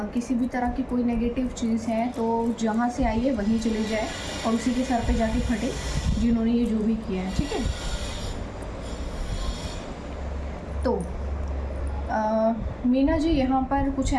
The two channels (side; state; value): both; identical; correlation 1.00